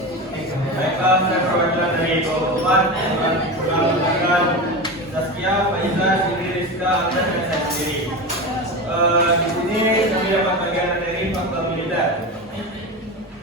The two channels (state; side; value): normal; both; correlation 0.24